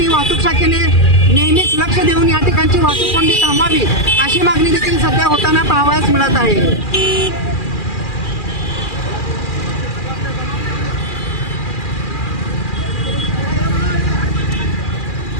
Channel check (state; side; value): late; right; 2.4 ms